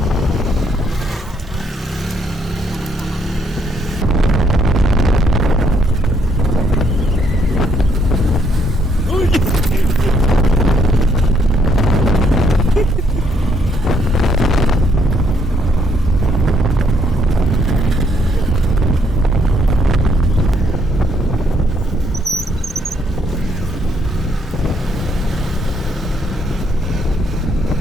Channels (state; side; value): normal; both; correlation 0.72